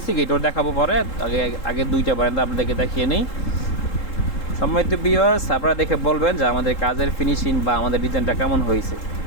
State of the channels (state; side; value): late; right; 3.7 ms